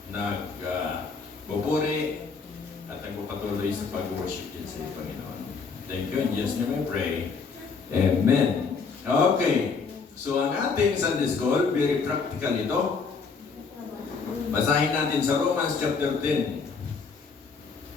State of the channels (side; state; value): right; quieter; 5.1 dB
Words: nagbuburi at nagpapatuloy sa pag-worship din sa iyo, Panginoon. Thank you. In Jesus' name I pray. Amen. Okay. So, ang ating Sunday School, very practical ito. Basahin natin sa Romans chapter 10.